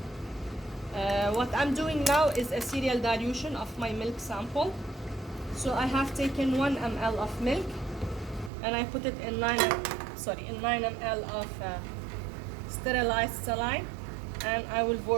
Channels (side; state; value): left; drops out; at 8.5 s